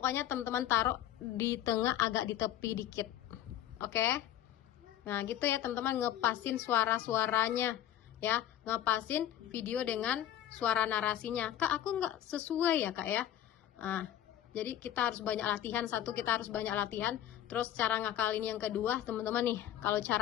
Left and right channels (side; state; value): right; quieter; 11.9 dB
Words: teman-teman taruh di tengah agak di tepi dikit. Oke? Nah, gitu ya teman-teman, ngepasin suara-suaranya. Ya, ngepasin video dengan suara narasinya. Kak, aku nggak sesuai ya Kak ya. Nah, jadi kita harus banyak latihan. Satu, kita harus banyak latihan. Terus cara ngakalin yang kedua, teman-teman nih. Kalau